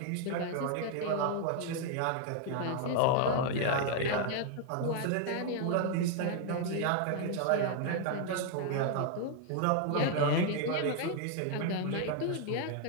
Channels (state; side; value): different; both; correlation 0.00